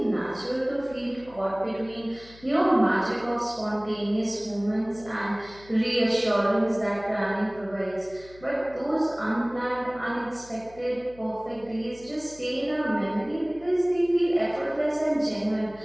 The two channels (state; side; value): noise; left; hum, 23 dB below the sound